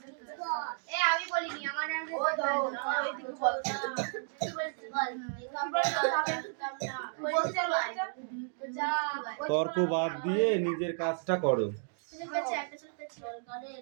তর্ক বাদ দিয়ে নিজের কাজটা করো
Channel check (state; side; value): silent; left; digital silence